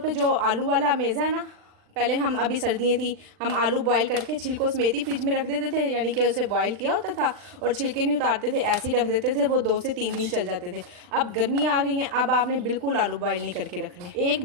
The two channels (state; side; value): late; left; 39 ms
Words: जो आलू वाला मेज़ा है ना, पहले हम, अभी सर्दियाँ थी, हम आलू बॉयल करके छिलकों समेत ही फ्रिज में रख देते थे, यानी कि उसे बॉयल किया होता था और छिलके नहीं उतारते थे, ऐसे ही रख देते थे, वो 2 से 3 दिन चल जाते थे। अब गर्मी आ गई हैं, अब आपने बिल्कुल आलू बॉयल नहीं करके रखने, एक